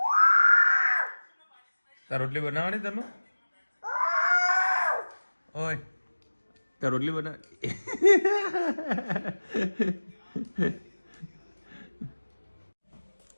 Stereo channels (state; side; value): inverted; both; correlation -1.00